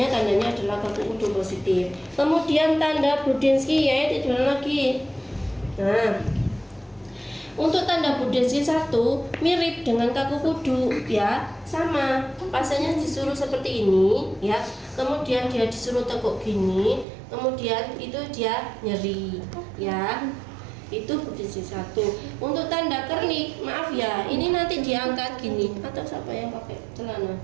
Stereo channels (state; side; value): drops out; left; at 17.1 s